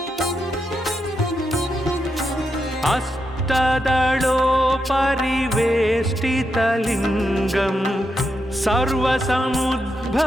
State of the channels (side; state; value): both; normal; correlation 0.84